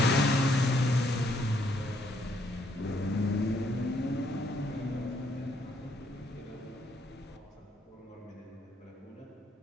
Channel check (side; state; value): both; normal; correlation 0.71